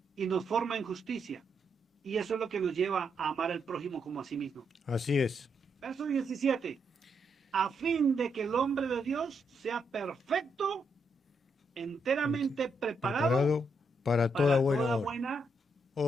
y nos forma en justicia. Y eso es lo que nos lleva a amar al prójimo como a sí mismo. así es. Verso 17. A fin de que el hombre de Dios sea perfecto, enteramente preparado Preparado para para toda buena toda obra. buena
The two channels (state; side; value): normal; both; correlation 0.79